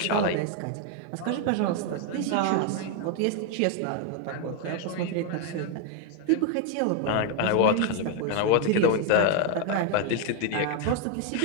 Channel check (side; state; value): both; different; correlation 0.01